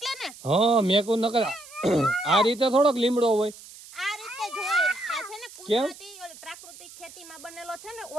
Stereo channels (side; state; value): right; noise; hiss, 18 dB below the sound